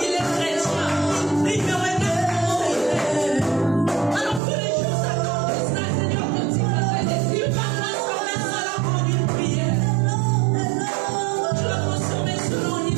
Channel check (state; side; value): drops out; left; at 4.4 s